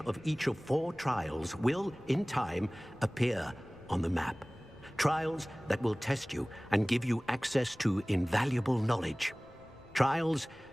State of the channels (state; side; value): noise; left; rumble, 26 dB below the sound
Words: of each of 4 trials will, in time, appear on the map. Trials that will test you and give you access to invaluable knowledge. Trials